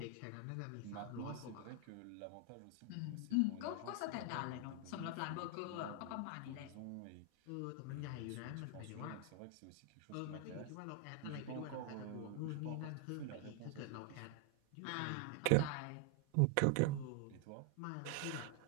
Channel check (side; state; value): both; different; correlation 0.00